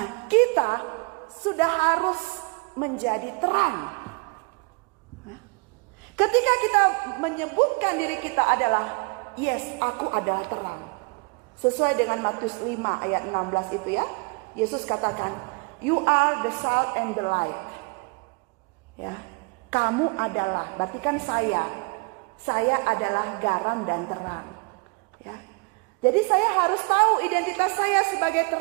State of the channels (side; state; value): left; quieter; 31.2 dB